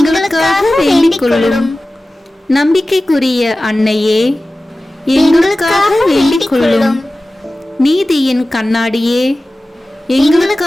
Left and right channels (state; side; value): normal; both; correlation 0.96